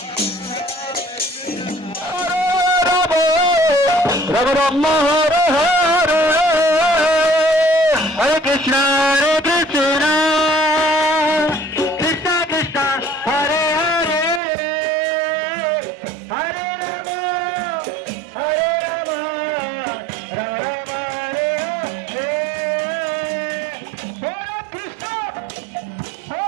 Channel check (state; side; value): drops out; left; at 14.4 s